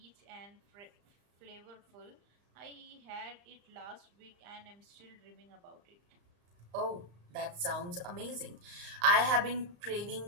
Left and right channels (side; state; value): left; late; 34 ms